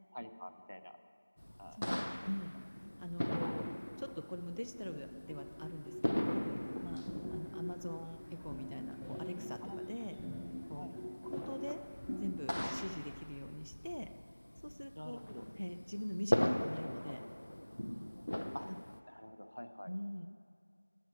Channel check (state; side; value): inverted; both; correlation -1.00